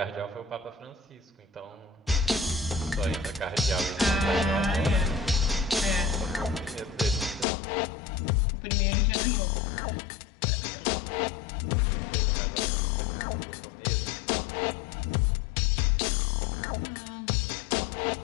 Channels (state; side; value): drops out; right; at 7.5 s